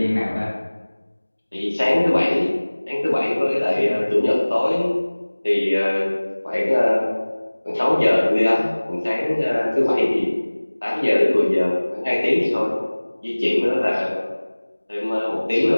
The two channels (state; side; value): inverted; both; correlation -1.00